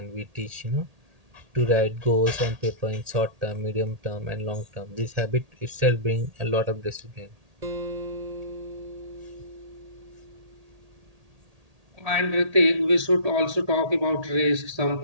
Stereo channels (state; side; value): late; left; 1.8 ms